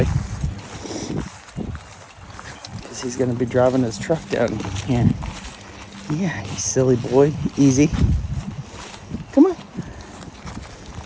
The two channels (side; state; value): both; identical; correlation 1.00